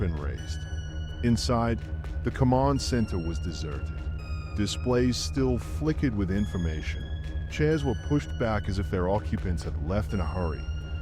raised. Inside, the command center was deserted. Displays still flickered with information. Chairs were pushed back as if their occupants had left in a hurry,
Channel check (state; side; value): identical; both; correlation 1.00